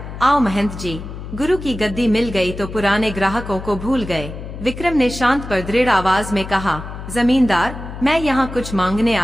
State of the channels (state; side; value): noise; left; hum, 10 dB below the sound